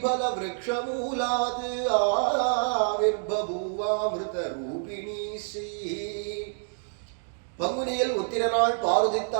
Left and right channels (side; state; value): left; silent; digital silence